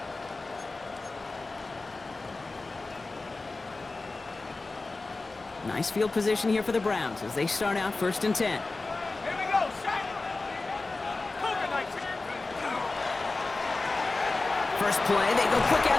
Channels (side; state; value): right; quieter; 3.5 dB